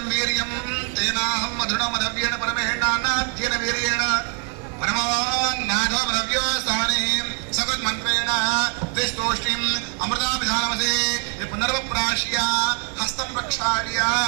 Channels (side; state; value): left; quieter; 39.5 dB